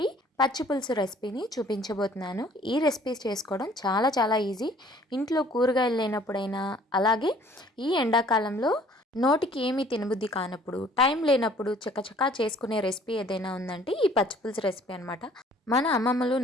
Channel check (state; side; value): normal; both; correlation 0.56